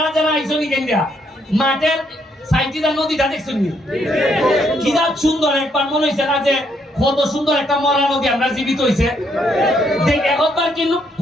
যারা আইসনি কেন্দ্রা মাঠের সাইটিটা নদীটা দেখছেন কি সুন্দর, একবার মনে হয়েছে না যে কত সুন্দর একটা মরা নদী আমরা জীবিত হয়েছে। একবার কিন্তু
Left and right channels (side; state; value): both; normal; correlation 0.73